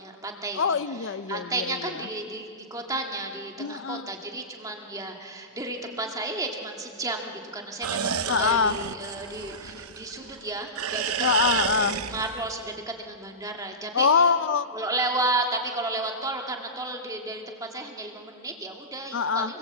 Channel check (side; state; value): both; normal; correlation -0.18